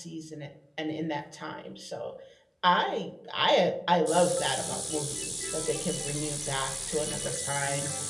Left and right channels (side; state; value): both; identical; correlation 1.00